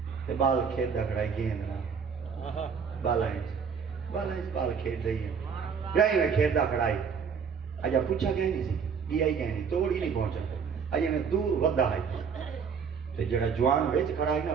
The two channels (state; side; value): quieter; left; 6.4 dB